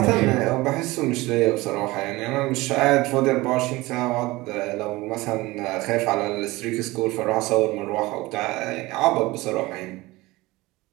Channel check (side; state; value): left; quieter; 20.6 dB